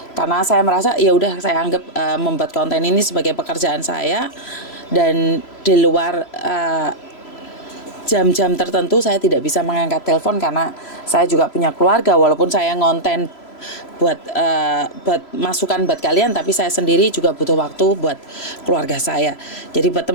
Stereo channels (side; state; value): right; late; 3.0 ms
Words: karena saya merasa ya udah, saya anggap membuat konten ini sebagai pekerjaan saya, dan di luar jam-jam tertentu saya tidak bisa mengangkat telepon karena saya juga punya keluarga. Walaupun saya ngonten buat masukan buat kalian, tapi saya sendiri juga butuh waktu buat keluarga saya. Jadi buat